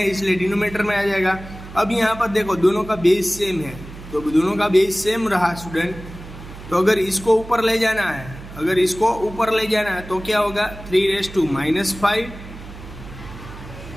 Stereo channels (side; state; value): right; noise; hum, 15 dB below the sound